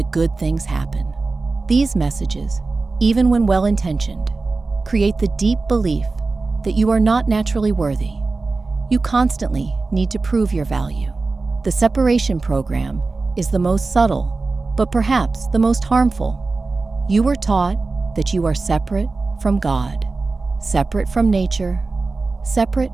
good things happen. These messages, even when well-intentioned, create the deep belief that you are not naturally worthy. You constantly need to prove your value. The separation program is the most subtle, but perhaps the most harmful. You were taught that you are separate from God, separate from nature, separate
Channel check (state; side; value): quieter; left; 3.7 dB